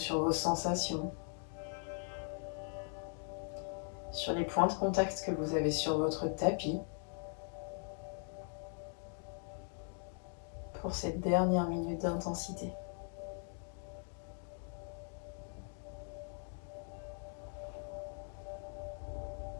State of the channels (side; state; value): right; silent; 51 dB below the other